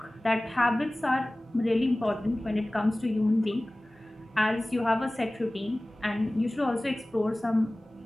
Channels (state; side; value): normal; both; correlation 0.98